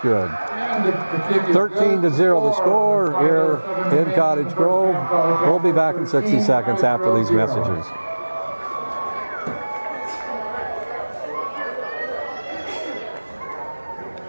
13-0 the score here in Cottage Grove. We'll be back in 60 seconds after these messages.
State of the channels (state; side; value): inverted; both; correlation -1.00